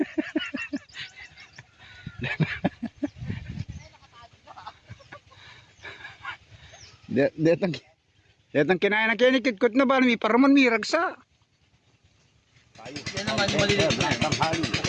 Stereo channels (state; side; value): identical; both; correlation 1.00